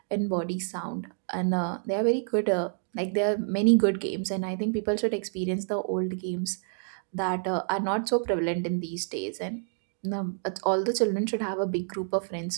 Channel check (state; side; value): silent; left; digital silence